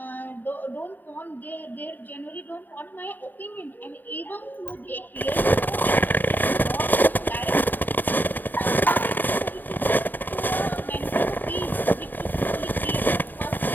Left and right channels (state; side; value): late; right; 0.089 ms